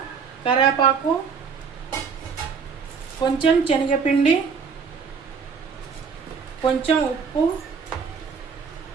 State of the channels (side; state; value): left; quieter; 5.9 dB